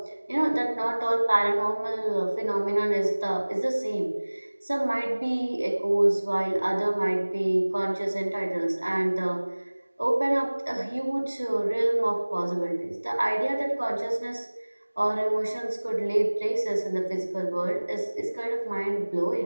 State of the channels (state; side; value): inverted; both; correlation -1.00